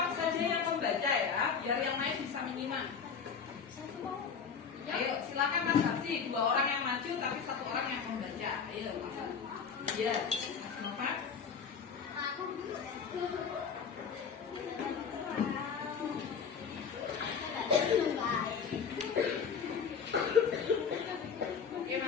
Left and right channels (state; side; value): quieter; right; 6.3 dB